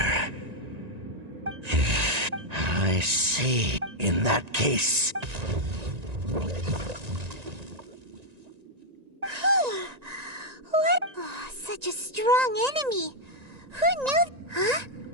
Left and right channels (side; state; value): left; late; 1.9 ms